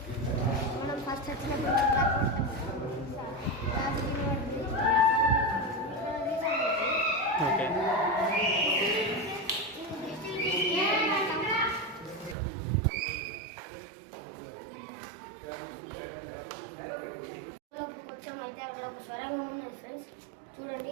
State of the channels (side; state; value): left; drops out; at 12.4 s